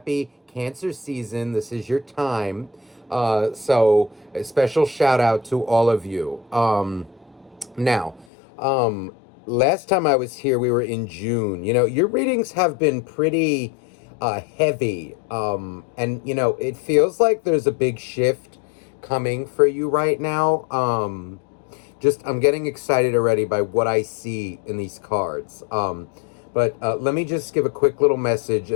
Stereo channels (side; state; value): right; drops out; at 8.2 s